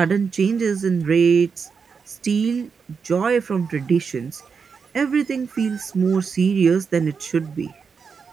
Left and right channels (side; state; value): left; quieter; 5.8 dB